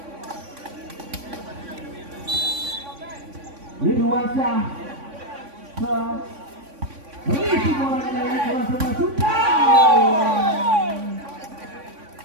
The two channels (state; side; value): late; left; 3.5 ms